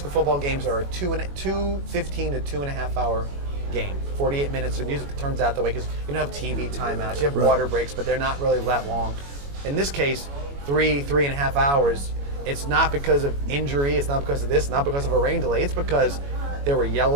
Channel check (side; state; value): left; late; 21 ms